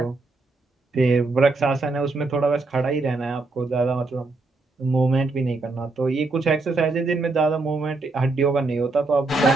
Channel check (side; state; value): left; quieter; 3.5 dB